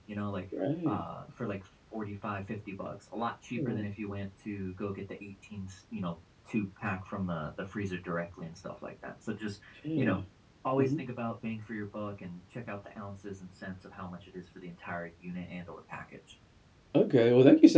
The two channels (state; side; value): identical; both; correlation 1.00